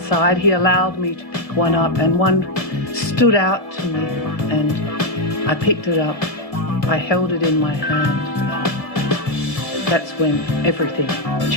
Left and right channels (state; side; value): late; right; 1.7 ms